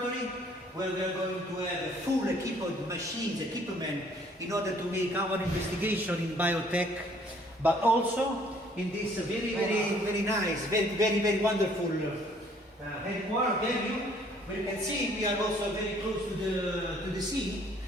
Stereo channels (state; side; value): normal; both; correlation 0.60